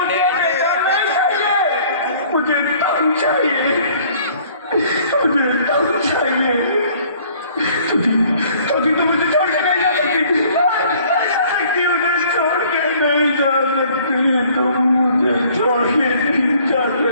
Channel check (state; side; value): inverted; both; correlation -0.56